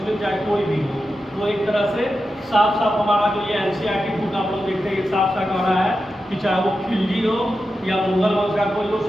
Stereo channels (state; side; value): normal; both; correlation 0.90